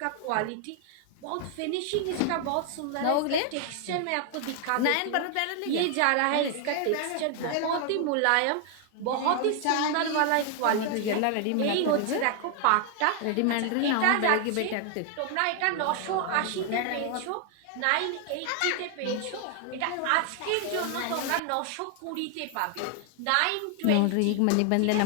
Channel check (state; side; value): different; both; correlation 0.00